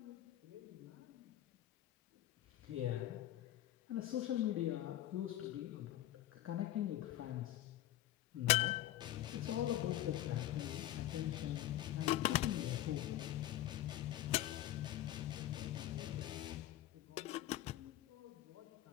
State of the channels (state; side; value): quieter; right; 13.8 dB